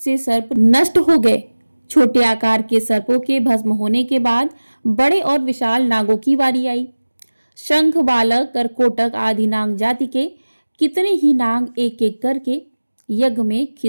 सर्प नष्ट हो गए। छोटे आकार के सर्पों के भस्म होने के बाद बड़े और विशाल नागों की बारी आई। शंख, बालक, करकोटक आदि नाग जाति के कितने ही नाग एक एक करके यज्ञ में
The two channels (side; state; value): both; inverted; correlation -1.00